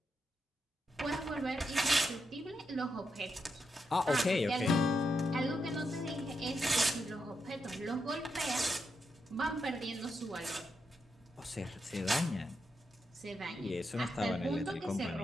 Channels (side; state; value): both; normal; correlation 0.84